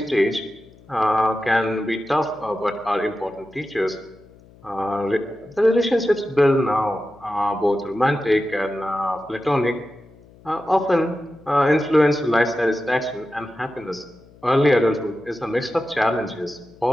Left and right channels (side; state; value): left; noise; hum, 25 dB below the sound